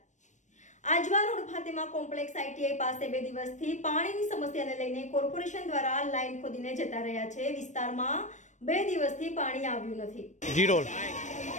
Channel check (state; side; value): late; right; 0.35 ms